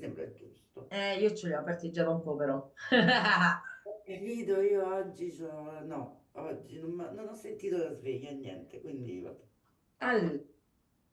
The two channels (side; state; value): both; identical; correlation 1.00